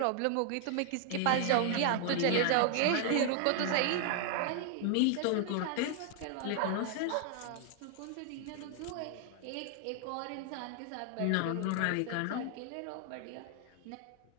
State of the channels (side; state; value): both; different; correlation 0.00